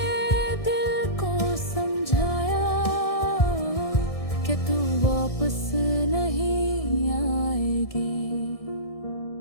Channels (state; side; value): late; right; 1.6 ms